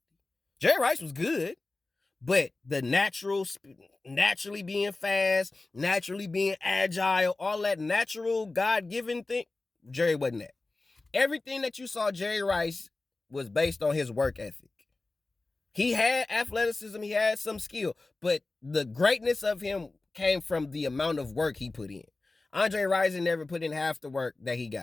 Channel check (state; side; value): quieter; right; 3.3 dB